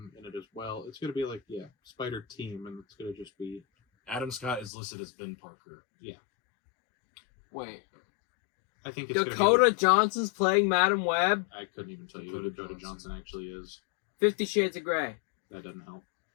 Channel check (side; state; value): right; drops out; at 4.7 s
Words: in it as well. It's gonna be like Spider Team, and it's gonna just be Adam Scott is listed as Ben Parker. Wait, I think it's Dakota Johnson's playing Madam Web. I couldn't even tell you Dakota who Dakota Johnson. Johnson actually is. 50 Shades of Grey. That doesn't help.